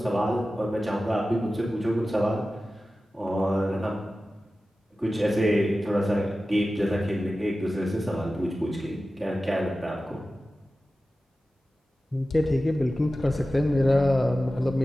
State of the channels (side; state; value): both; normal; correlation 0.95